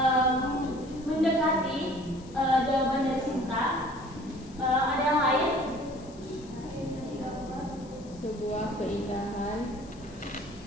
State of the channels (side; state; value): left; noise; hiss, 24 dB below the sound